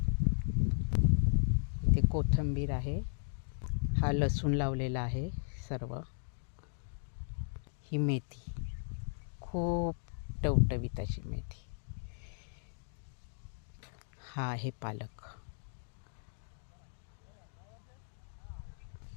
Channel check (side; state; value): right; silent; digital silence